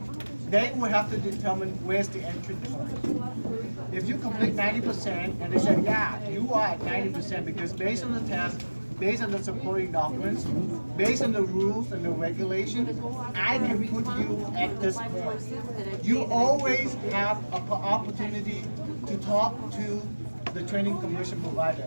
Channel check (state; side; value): inverted; both; correlation -1.00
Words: They will have to determine where's the entry point. If you complete 90% and they say, yeah, you are at 90% because based on the test, based on the supporting documents, based on the rules and the regulations, I can put you at this point. You always have an opportunity to talk to the training commission